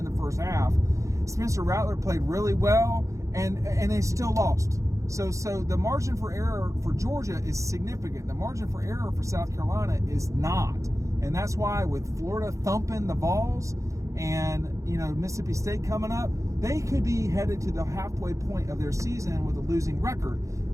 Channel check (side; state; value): left; late; 0.15 ms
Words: the first half. Spencer Rattler played really well, and they still lost. So the margin for error for Georgia is significant. The margin for error for South Carolina is not, and that's why with Florida thumping the Vols and Mississippi State coming up, they could be headed to the halfway point of their season with a losing record.